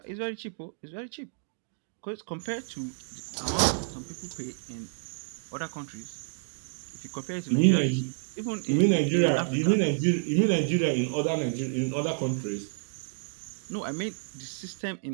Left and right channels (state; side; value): silent; left; digital silence